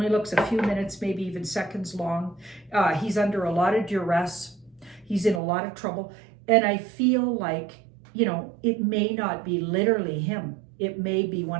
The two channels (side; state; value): left; drops out; at 5.4 s